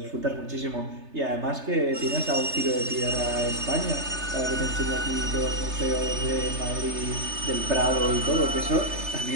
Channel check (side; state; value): left; late; 3.3 ms